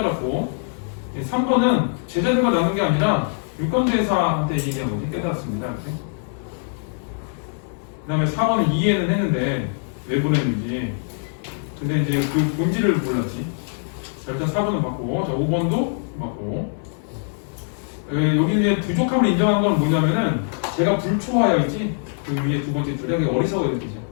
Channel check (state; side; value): silent; right; digital silence